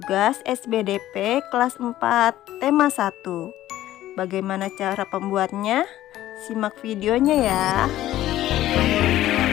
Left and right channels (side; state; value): right; quieter; 14.0 dB